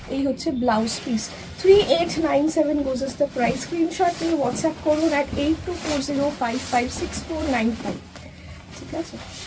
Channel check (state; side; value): identical; both; correlation 1.00